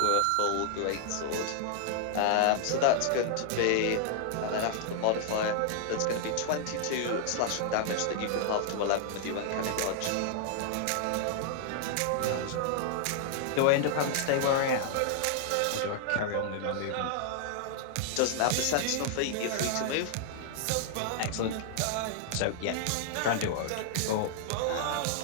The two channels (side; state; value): both; different; correlation -0.01